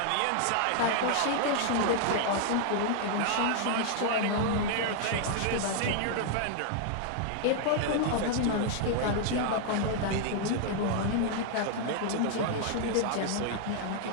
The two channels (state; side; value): different; both; correlation 0.00